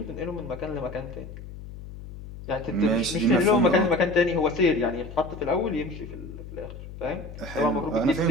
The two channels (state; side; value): noise; left; hum, 13 dB below the sound